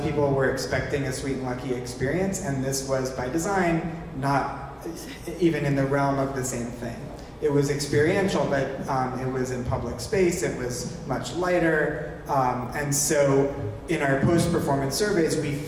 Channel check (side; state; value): both; identical; correlation 1.00